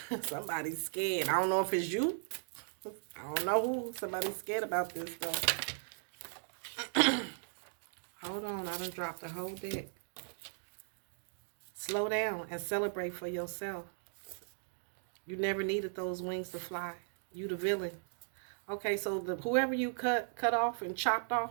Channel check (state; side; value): silent; left; digital silence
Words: Somebody's scared. I don't know if it's you. I don't know who. Somebody's scared about this though. Hold on. I done dropped the whole deck. Slow down and celebrate for yourself. You never needed those wings to fly. You the villain. Okay, so whoever you cut off and chopped